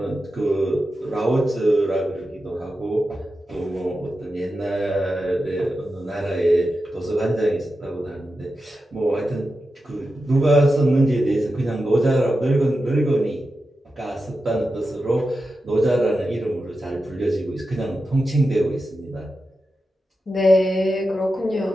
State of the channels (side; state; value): both; normal; correlation 0.91